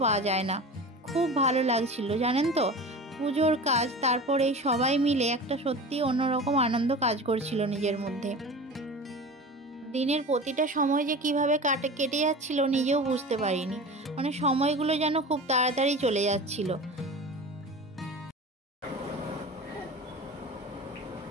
পাওয়া যায় না। খুব ভালো লাগছিল জানেন তো, পুজোর কাজ, তারপর এই সবাই মিলে একটা সত্যি অন্যরকম আনন্দ কাজ করছিল নিজের মধ্যে। দিনের প্রতিটা সময় যে কিভাবে কেটে যাচ্ছিল নিজেও বুঝতে পারিনি, মানে সময়গুলো যেন খুব তাড়াতাড়ি চলে যাচ্ছিল।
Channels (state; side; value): normal; both; correlation 0.34